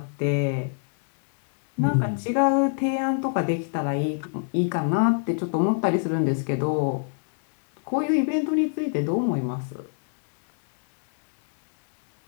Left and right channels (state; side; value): silent; right; 61 dB below the other